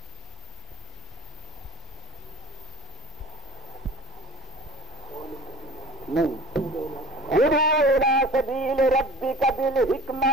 نہیں سبیل ربک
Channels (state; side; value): normal; both; correlation 0.43